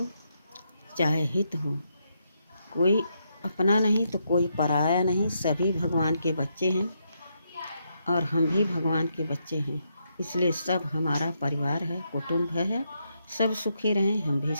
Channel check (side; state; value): both; inverted; correlation -0.80